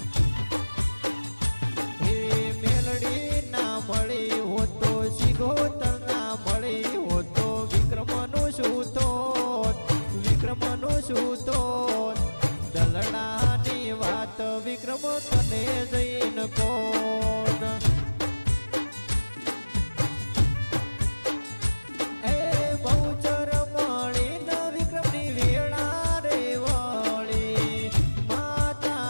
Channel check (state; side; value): inverted; both; correlation -1.00